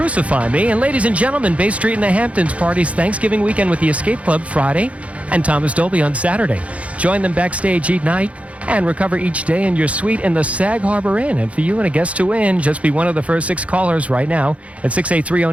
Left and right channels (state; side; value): late; left; 0.064 ms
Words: Me. And ladies and gentlemen, Bay Street in the Hamptons parties Thanksgiving weekend with the Escape Club Friday and Thomas Dolby on Saturday. Join them backstage each night and recover each day in your suite in the Sag Harbor Inn. And for you and a guest to win, just be one of the first 6 callers right now at